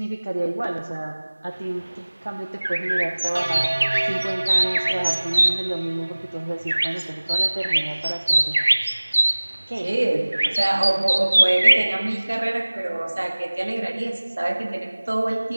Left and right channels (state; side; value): inverted; both; correlation -1.00